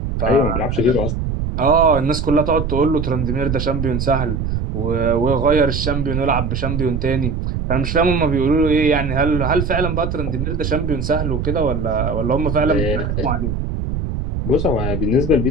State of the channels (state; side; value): noise; right; rumble, 2 dB below the sound